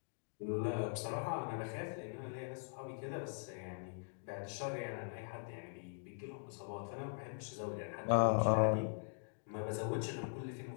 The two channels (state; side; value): silent; right; digital silence